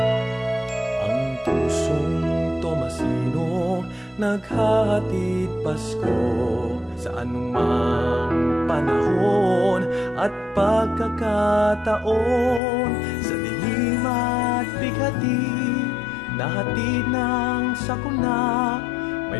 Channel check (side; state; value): right; drops out; at 12.6 s